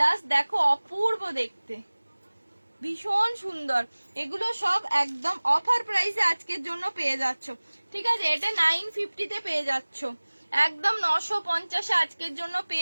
দেখো অপূর্ব দেখতে, ভীষণ সুন্দর। এগুলো সব একদম অফার প্রাইসে আজকের জন্য পেয়ে যাচ্ছ, ঠিক আছে? এটা 950 তে পেয়ে যাচ্ছ, একদম 950 আজকের জন্য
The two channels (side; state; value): both; inverted; correlation -1.00